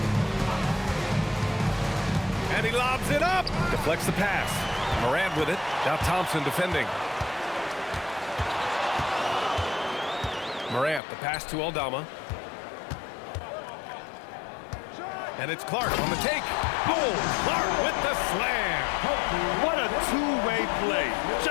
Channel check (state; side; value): drops out; right; at 11.0 s